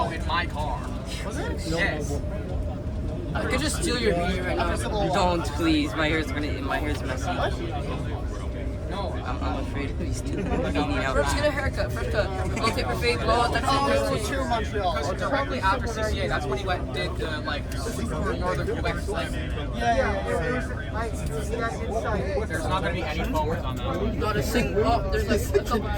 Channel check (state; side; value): identical; both; correlation 1.00